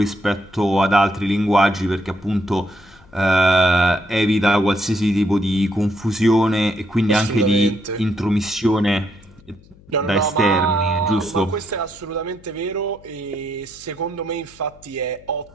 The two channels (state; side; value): noise; left; hum, 26 dB below the sound